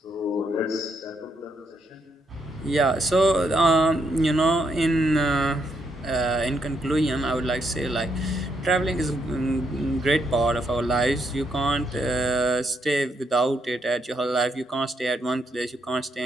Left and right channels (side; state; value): both; normal; correlation 0.77